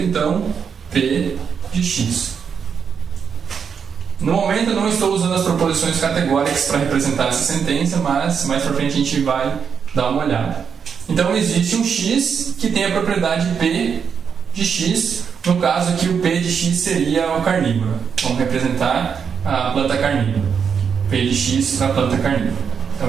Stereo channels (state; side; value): quieter; left; 6.7 dB